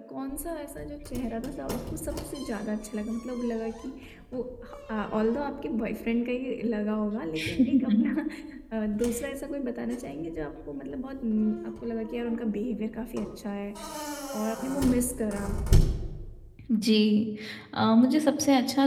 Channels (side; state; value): both; identical; correlation 1.00